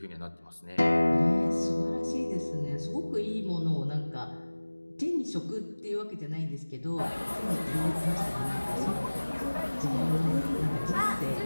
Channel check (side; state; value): both; inverted; correlation -1.00